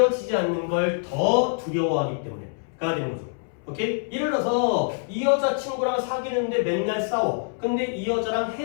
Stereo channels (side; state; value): right; silent; 62 dB below the other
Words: 않는 걸 더 두려워하기 때문에가 되는 거죠. 오케이? 예를 들어서 이 여자 친구랑 사귀는데 맨날 싸워. 근데 이 여자랑